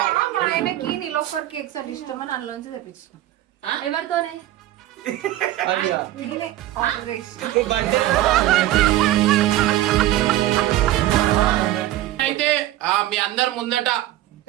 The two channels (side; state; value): left; quieter; 14.5 dB